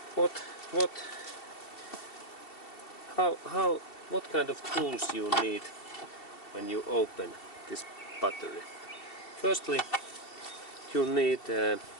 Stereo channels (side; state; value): right; late; 2.7 ms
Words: what kind of tools you need when you open this battery? Firstly, you need a